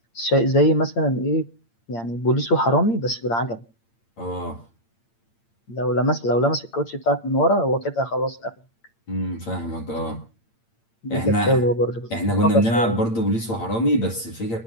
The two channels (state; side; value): late; right; 8.8 ms